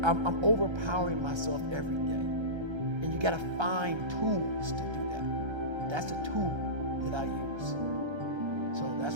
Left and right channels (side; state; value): left; late; 1.3 ms